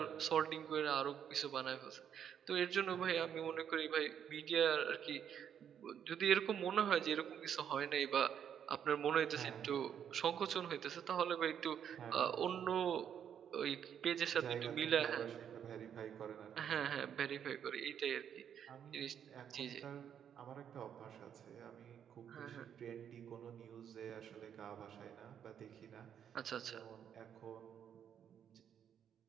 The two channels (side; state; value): left; quieter; 8.8 dB